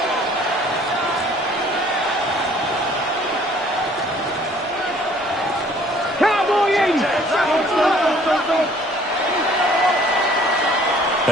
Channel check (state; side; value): normal; both; correlation 0.56